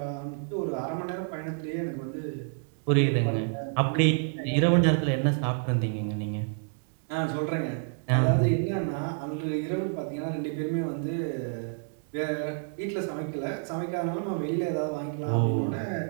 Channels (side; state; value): left; silent; 59 dB below the other